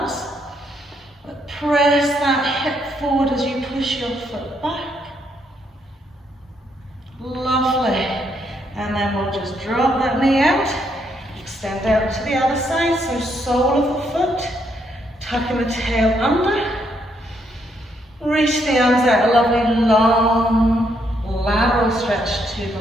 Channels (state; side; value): normal; both; correlation 0.74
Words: but press that hip forward as you push your foot back. Lovely. And then we'll just drop that knee out, extend out to the other side, so sole of the foot, tucking the tail under, reach the arms out, a lovely long lateral stretch to